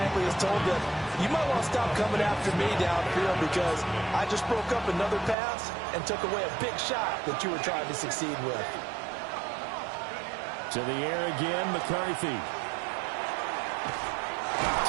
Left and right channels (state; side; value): drops out; left; at 5.4 s